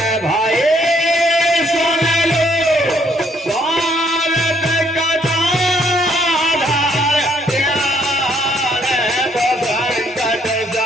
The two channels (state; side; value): normal; both; correlation 0.68